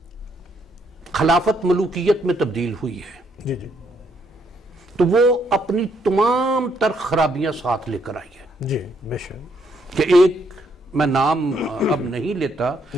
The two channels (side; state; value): both; normal; correlation 0.72